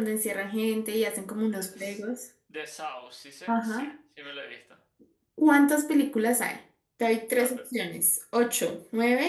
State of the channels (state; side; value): identical; both; correlation 1.00